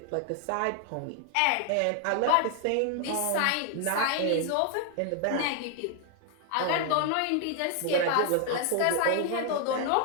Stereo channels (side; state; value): both; different; correlation 0.00